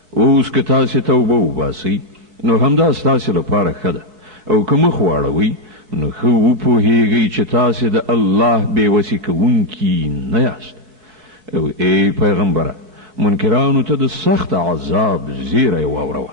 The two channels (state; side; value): late; left; 4.6 ms